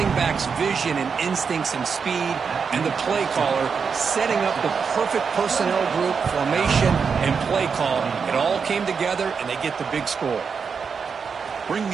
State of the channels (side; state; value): left; quieter; 5.9 dB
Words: back's vision and instincts and speed, and the play caller setting up the perfect personnel group, formation, and play call. It all came together, and they get the big score. Bringing